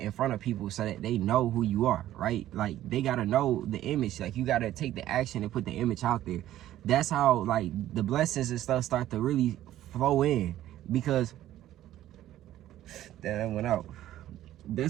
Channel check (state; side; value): quieter; left; 13.3 dB